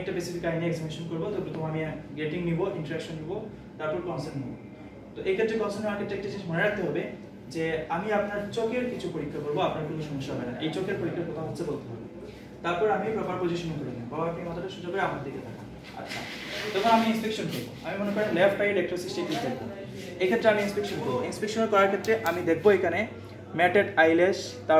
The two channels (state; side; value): identical; both; correlation 1.00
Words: বেসিক আইনে এক্সামিনেশন করব। তো প্রথমে আমি গেটিং নিব, ইন্টারাকশন নিব, তারপর কনসেন্ট নিব। তো এই ক্ষেত্রে কনসেন্ট নেওয়ার ক্ষেত্রে একটা জিনিস মনে রাখতে হবে যে আমি আপনার চোখের কিছু পরীক্ষা করব, আপনার কোনো সমস্যা হবে না। এই চোখের পরীক্ষার কথা হচ্ছে বলতে হবে। তারপর আমি প্রপার পজিশনিং করে নেব। বাবা আপনি মাথাটা সোজা করে আমার দিকে তাকান। আচ্ছা, তখন আমি ইন্সপেকশন করব। আমি মনে করেন লেফট আই ডেক্রোসিস্টেটিস দেখব। এই ক্ষেত্রে আমি ইন্সপেকশন করব। ইন্সপেকশন করার ক্ষেত্রে আমি দেখব এখানে ম্যাটেড আইল্যাশ,